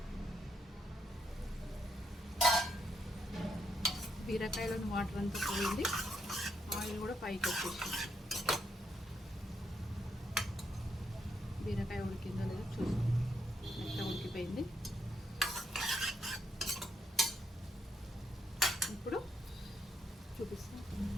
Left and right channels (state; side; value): normal; both; correlation 0.77